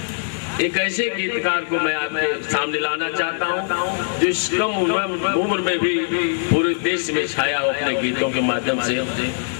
एक ऐसे गीतकार को मैं आपके सामने लाना चाहता हूँ जो इस कम उम्र में भी पूरे देश में छाया हो, अपने गीतों के माध्यम से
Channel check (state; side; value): silent; right; 63 dB below the other